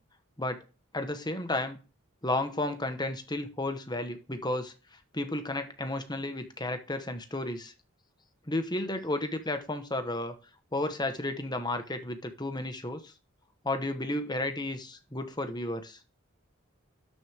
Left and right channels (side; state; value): both; normal; correlation 0.47